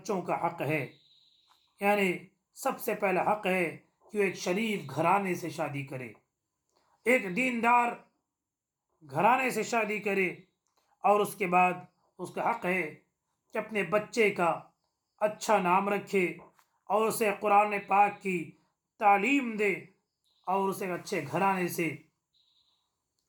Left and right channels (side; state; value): both; identical; correlation 1.00